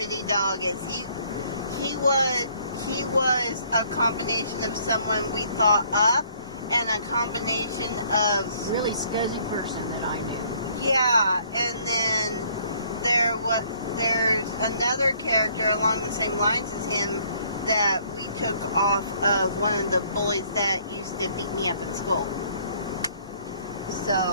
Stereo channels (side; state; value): both; inverted; correlation -0.62